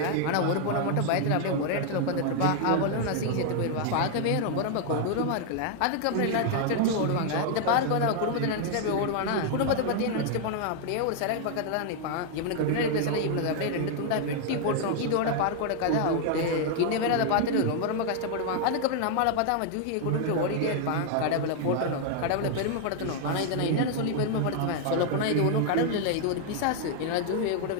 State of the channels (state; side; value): different; both; correlation 0.00